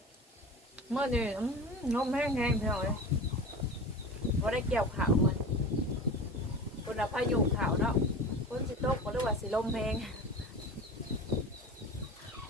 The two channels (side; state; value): both; normal; correlation 0.32